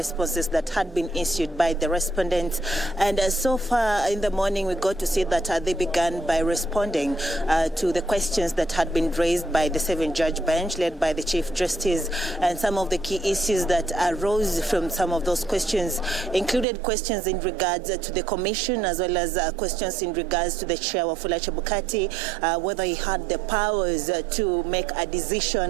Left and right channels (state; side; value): drops out; left; at 16.7 s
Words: that had been issued by the respondents. And so far in the morning, we got to see that they began by responding to the questions that had been raised by the 7-judge bench led by the Chief Justice. And some of the key issues that arose from some of those questions included questions in regards to the commission, as well as questions in regards to the chair Wafula Chebukati, whether he had the powers to make a